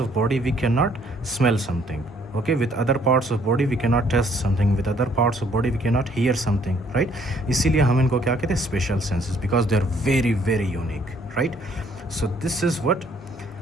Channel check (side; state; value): both; normal; correlation 0.64